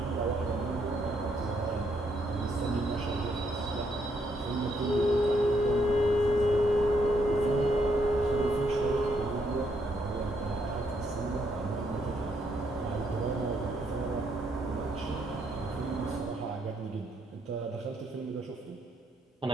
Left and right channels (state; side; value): normal; both; correlation 0.74